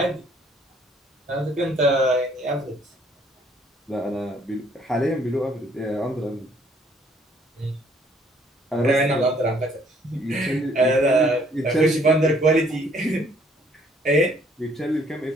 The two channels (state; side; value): normal; both; correlation 0.63